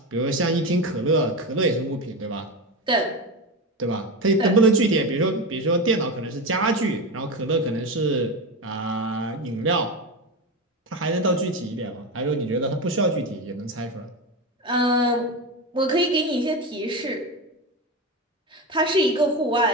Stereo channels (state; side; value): normal; both; correlation 0.19